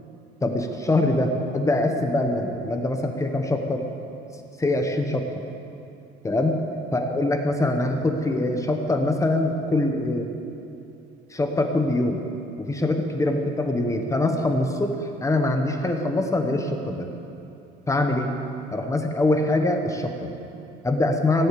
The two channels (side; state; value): both; normal; correlation 0.70